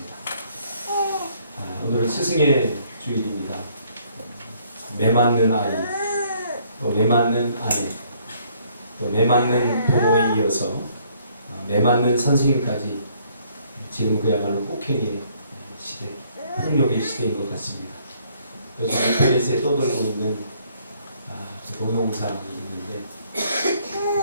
오늘은 스승의 주일입니다. 매맞는 아이, 또 매맞는 아내, 또 매맞는 부모에 이어서 매맞는 선생님까지 지금 그야말로 폭행의 시대, 폭력의 시대인 것 같습니다. 요즘 인터넷에 떠돌고 있는 그 동영상이 있는데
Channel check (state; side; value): inverted; both; correlation -0.64